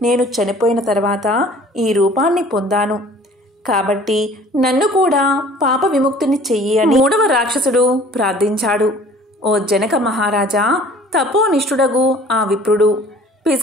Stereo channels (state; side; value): normal; both; correlation 0.50